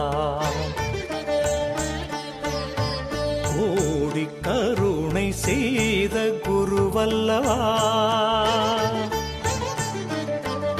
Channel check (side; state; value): both; identical; correlation 1.00